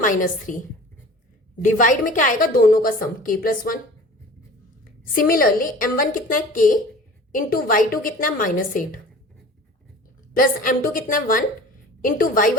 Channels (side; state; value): both; normal; correlation 0.42